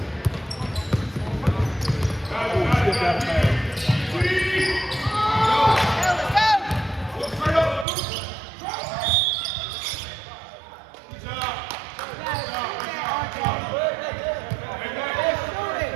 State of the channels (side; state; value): left; drops out; at 7.9 s